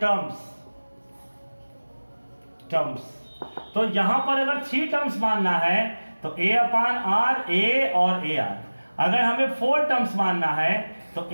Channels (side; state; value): both; inverted; correlation -1.00